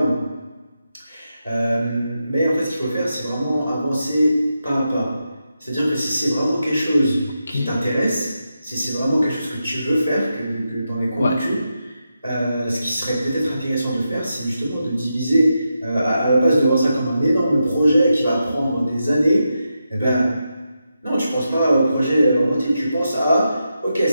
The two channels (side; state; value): both; inverted; correlation -0.87